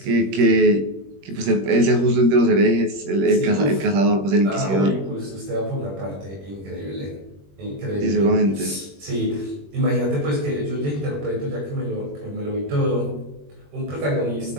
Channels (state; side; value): late; left; 21 ms